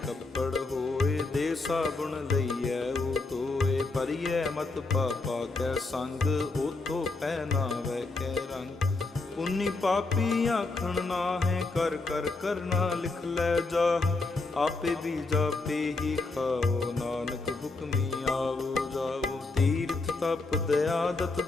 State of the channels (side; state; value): right; quieter; 3.5 dB